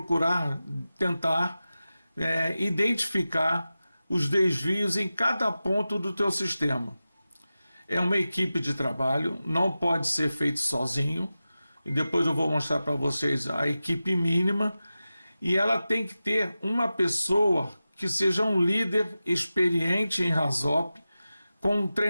tentar identificar os desvios em cada ponto do teu sistema. É uma equipe de trabalho, não pode ser feito sozinho, e depois eu vou mostrar para vocês a equipe mínima, e ela tem que ter uma pessoa que seja um líder experiente em RASOP, com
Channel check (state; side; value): inverted; both; correlation -0.94